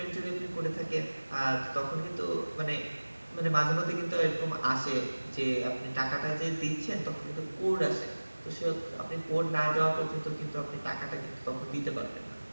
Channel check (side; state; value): both; inverted; correlation -1.00